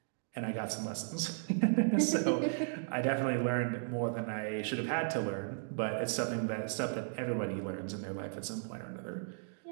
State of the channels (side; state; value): left; silent; digital silence